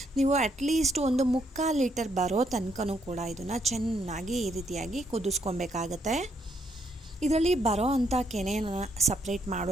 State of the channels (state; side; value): normal; both; correlation 0.73